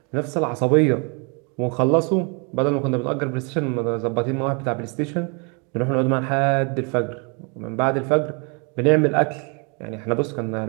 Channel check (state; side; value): quieter; left; 34.5 dB